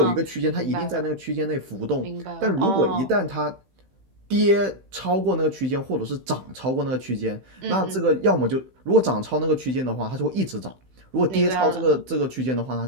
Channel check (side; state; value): left; late; 15 ms